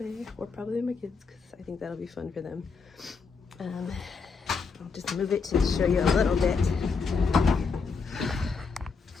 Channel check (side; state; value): right; quieter; 5.0 dB